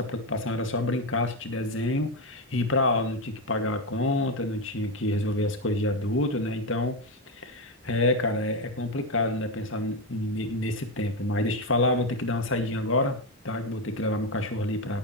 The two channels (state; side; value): normal; both; correlation 0.11